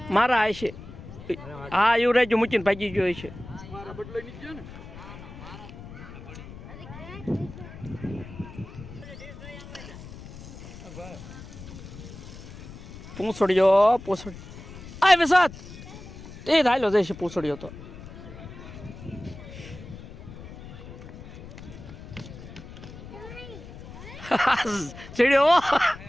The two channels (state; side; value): noise; left; rumble, 14 dB below the sound